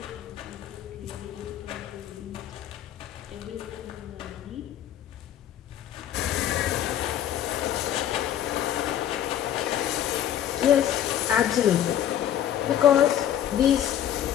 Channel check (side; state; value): right; quieter; 10.8 dB